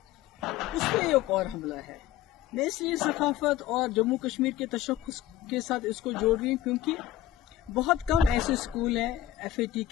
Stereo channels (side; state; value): right; quieter; 12.6 dB